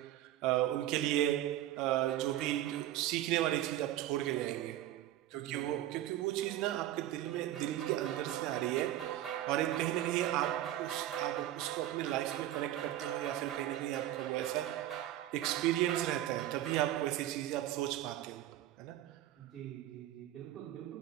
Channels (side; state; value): left; quieter; 13.3 dB